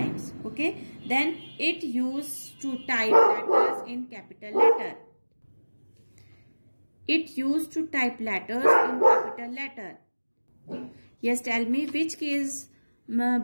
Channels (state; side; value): inverted; both; correlation -1.00